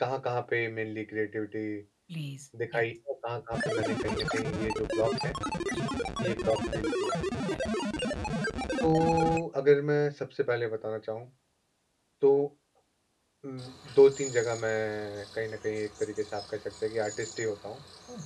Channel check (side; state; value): both; identical; correlation 1.00